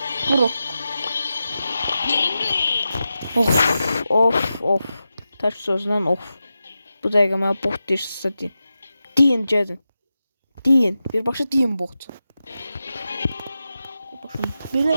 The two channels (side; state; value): both; inverted; correlation -0.92